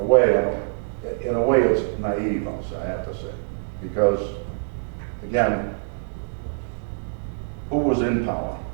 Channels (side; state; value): left; silent; digital silence